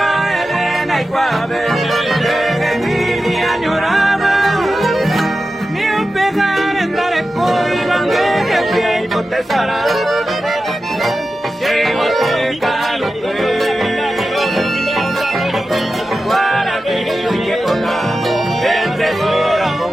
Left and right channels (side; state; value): both; normal; correlation 0.92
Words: Elena y Guave, que mi añorada, ni un pegar en dar el coibán que fui y potesará. Llego te calo, guaraquillo y que toca, el tesoro